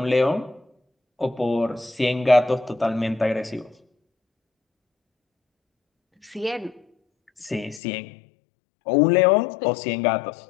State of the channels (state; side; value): drops out; right; at 7.8 s